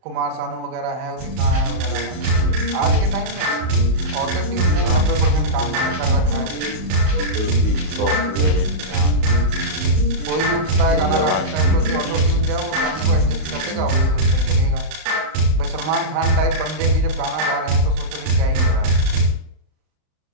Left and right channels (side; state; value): left; late; 38 ms